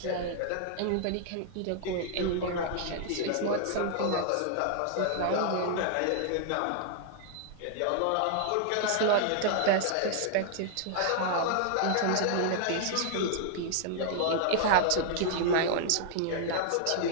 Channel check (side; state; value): both; different; correlation -0.01